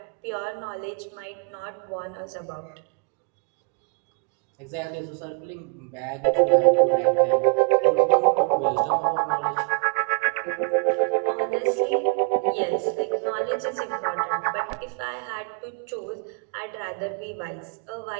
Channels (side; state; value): left; quieter; 39.9 dB